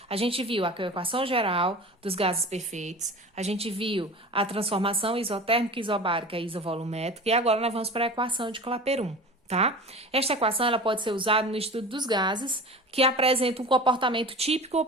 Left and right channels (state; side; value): normal; both; correlation 0.35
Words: A gente viu a equação geral dos gases perfeitos, a gente viu a transformação isotérmica, isobárica e isovolumétrica, e agora nós vamos para a equação de Clapeyron, tá? Esta equação ela pode ser usada no estudo dos gases que apresentam um comportamento típico ou